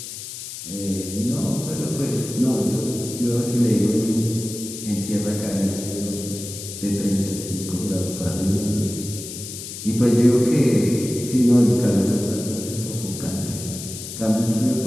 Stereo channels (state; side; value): noise; left; hiss, 10 dB below the sound